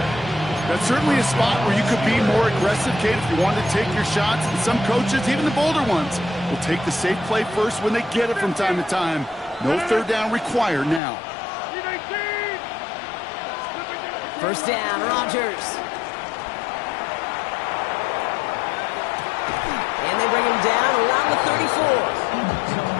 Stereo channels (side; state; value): right; drops out; at 11.0 s